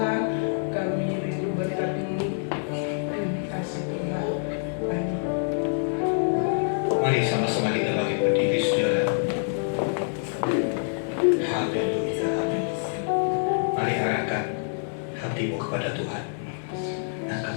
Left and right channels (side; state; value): right; silent; 61 dB below the other